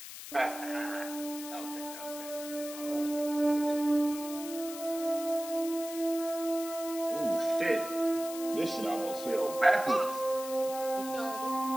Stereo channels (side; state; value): left; noise; hiss, 11 dB below the sound